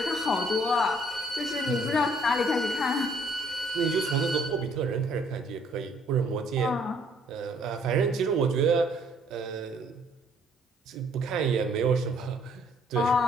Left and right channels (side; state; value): both; normal; correlation 0.63